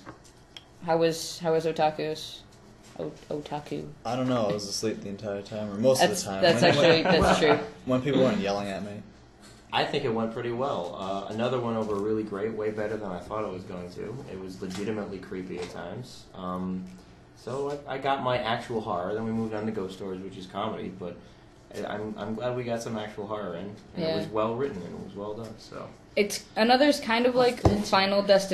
was Otaku's? Otaku. I don't know. I was asleep the entire time, or most of the time. That's true. When people weren't yelling at me. I think it went pretty well. Another one over really great, way better than I thought it was going to. It was legitimately creepy at times. So I got my actual horror. Then we moved on to ghost stories, which is comedy. But I'm glad we got some actual horror in. And it was well written and it was well done. So it's another's kind of like Final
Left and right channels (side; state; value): both; identical; correlation 1.00